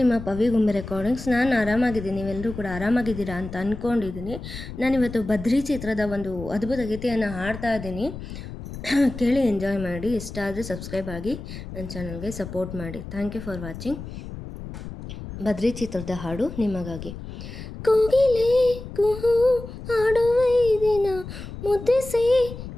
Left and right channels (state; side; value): noise; left; rumble, 11 dB below the sound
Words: ನಿಮ್ಮ ಪವಿಗುಂಬೆ ರೆಕಾರ್ಡಿಂಗ್ಸ್. ನಾನು ಆರಾಮಾಗಿದ್ದೀನಿ, ನೀವೆಲ್ಲರೂ ಕೂಡ ಆರಾಮಾಗಿದ್ದೀರಾ ಅಂತ ಅಂದ್ಕೊಂಡಿದ್ದೀನಿ. ನಾನಿವತ್ತು ಬದ್ರಿ ಚಿತ್ರದ ಒಂದು ಅದ್ಭುತ ಗೀತೆಯನ್ನು ಹಾಡ್ತಾ ಇದ್ದೀನಿ. ಕೇಳಿ ಎಂಜಾಯ್ ಮಾಡಿ. ಇಷ್ಟ ಆದರೆ ಸಬ್ಸ್ಕ್ರೈಬ್ ಆಗಿ ನನ್ನ ಚಾನಲ್ಗೆ ಸಪೋರ್ಟ್ ಮಾಡಿ. Thank you for watching. Badri ಚಿತ್ರದ ಹಾಡು ನಿಮಗಾಗಿ. ಕೋಗಿಲೆ ಕುಹು ಹಾಡುವ ದಿನ, ಮುದ್ದಿಸಿ